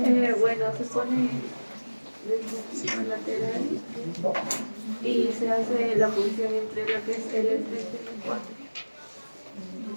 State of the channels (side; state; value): both; inverted; correlation -1.00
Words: Bueno, se pone el lateral y se hace la punción entre lo que es el L3 y el 4.